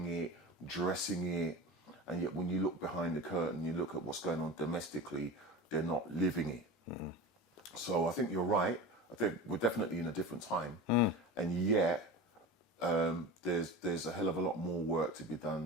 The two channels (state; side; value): normal; both; correlation 0.31